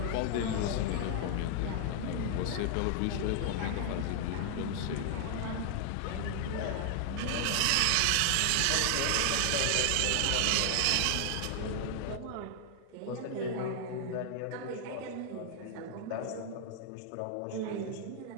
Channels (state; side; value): different; both; correlation 0.00